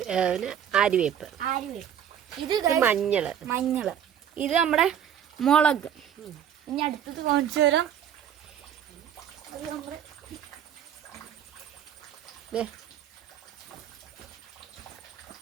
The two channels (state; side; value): quieter; left; 9.5 dB